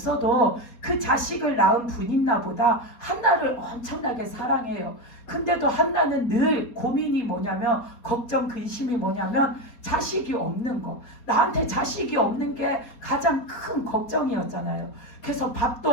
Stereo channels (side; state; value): right; late; 4.2 ms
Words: 그 자식을 낳은 분인나보다 한나를 엄청나게 사랑해요. 근데도 한나는 늘 고민이 뭐냐면 걱정 근심이 뭐냐면 자식이 없는 거. 나한테 자식이 없는 게 가장 큰 걱정이었잖아요. 그래서